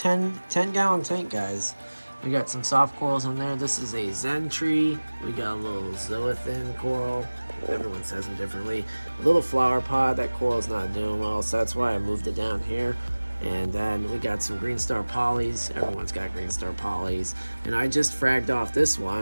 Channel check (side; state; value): both; inverted; correlation -1.00